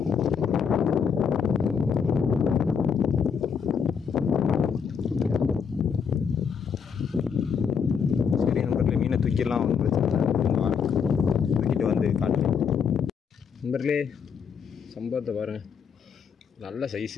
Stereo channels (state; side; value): quieter; right; 6.7 dB